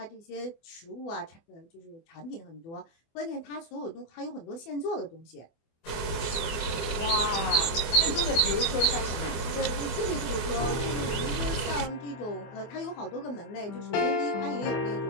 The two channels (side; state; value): right; late; 24 ms